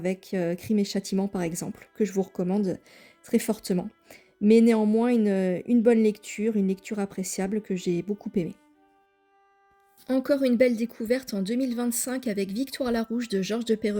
Crime et Châtiment par exemple, que je vous recommande très fortement. Mais néanmoins une bonne lecture, une lecture appréciable que j'ai beaucoup aimée. Encore une belle découverte en 2025 avec Victoire Larouche de Georges de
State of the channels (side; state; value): both; identical; correlation 1.00